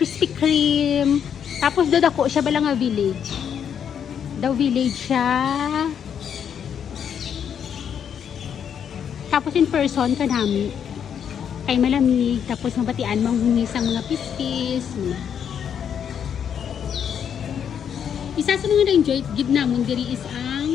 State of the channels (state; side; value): quieter; right; 8.2 dB